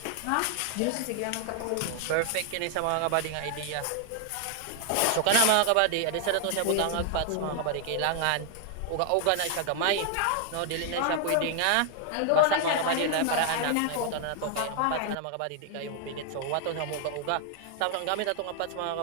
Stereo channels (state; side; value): different; both; correlation 0.00